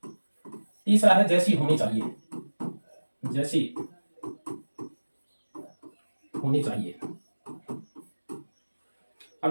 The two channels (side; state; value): both; inverted; correlation -1.00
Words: तीसरा है जैसी होनी चाहिए, जैसी होनी चाहिए। अब